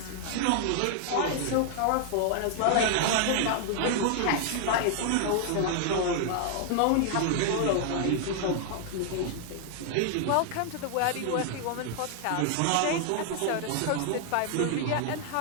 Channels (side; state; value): both; different; correlation 0.00